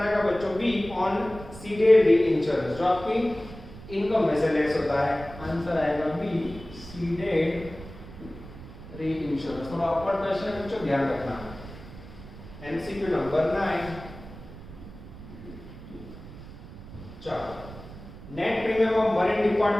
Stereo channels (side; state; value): right; noise; rumble, 15 dB below the sound